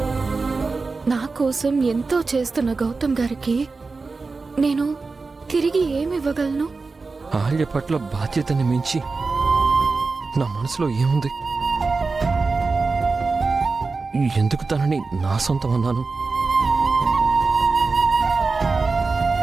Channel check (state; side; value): quieter; left; 4.1 dB